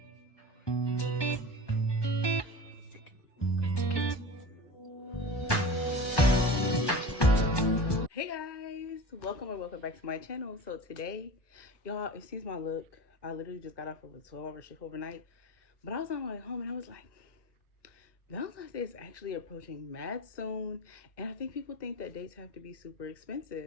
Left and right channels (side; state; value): right; late; 1.2 ms